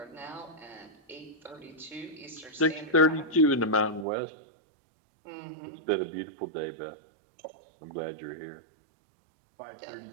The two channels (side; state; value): left; drops out; at 4.0 s